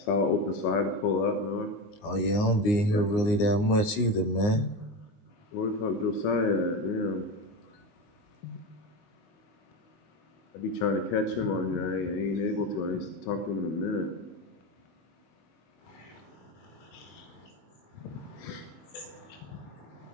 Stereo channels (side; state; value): right; late; 19 ms